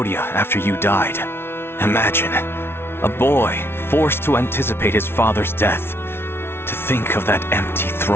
after you died. Imagine, a boy forced to anticipate his father's death. To think of that empty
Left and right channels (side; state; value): right; late; 0.12 ms